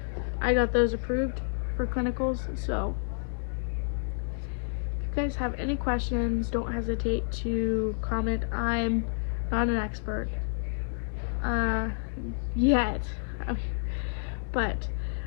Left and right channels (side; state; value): right; silent; digital silence